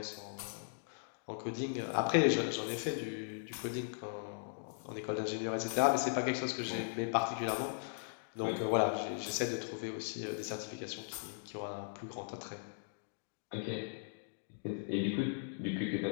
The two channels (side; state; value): right; silent; digital silence